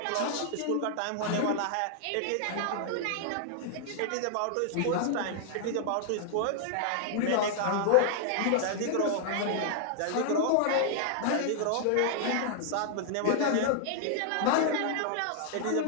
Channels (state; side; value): different; both; correlation 0.00